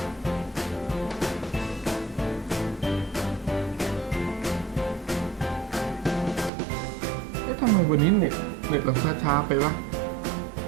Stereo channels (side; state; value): left; drops out; at 6.5 s